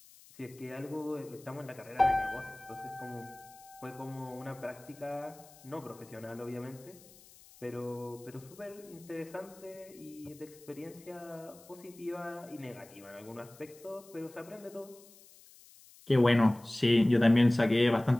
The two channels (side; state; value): left; noise; hiss, 23 dB below the sound